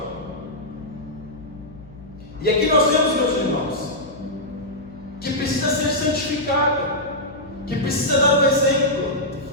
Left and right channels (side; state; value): left; noise; hum, 21 dB below the sound